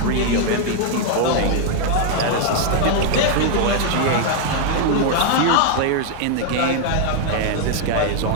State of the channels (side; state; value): both; different; correlation 0.00